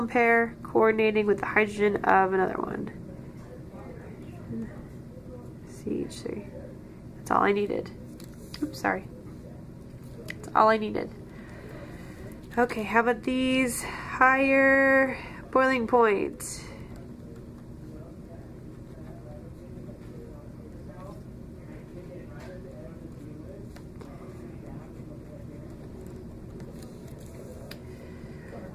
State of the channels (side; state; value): both; identical; correlation 1.00